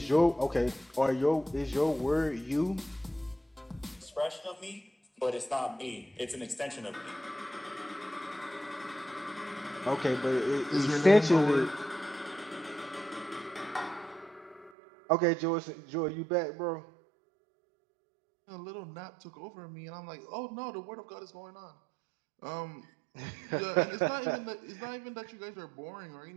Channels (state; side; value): drops out; left; at 14.7 s